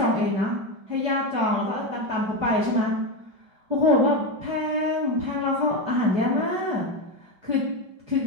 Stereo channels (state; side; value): late; left; 5.2 ms